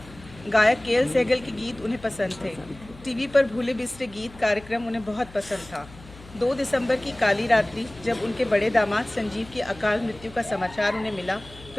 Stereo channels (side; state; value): left; noise; hum, 20 dB below the sound